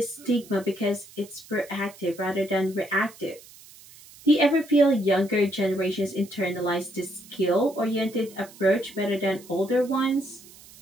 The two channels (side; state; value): right; noise; hiss, 21 dB below the sound